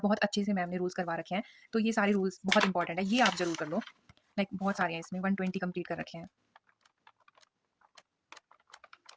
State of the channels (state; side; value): identical; both; correlation 1.00